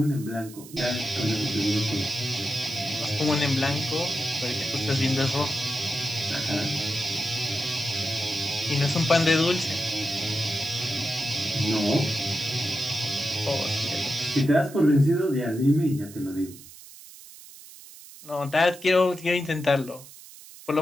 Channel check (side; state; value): right; noise; hiss, 18 dB below the sound